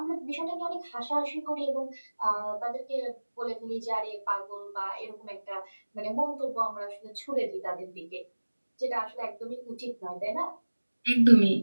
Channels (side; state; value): both; inverted; correlation -1.00